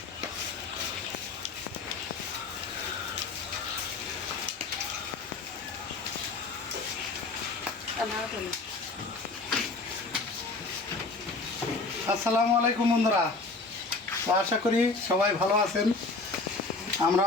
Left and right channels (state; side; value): quieter; right; 3.7 dB